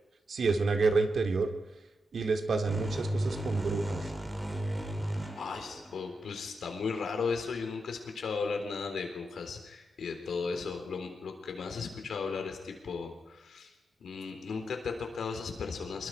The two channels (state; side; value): normal; both; correlation 0.85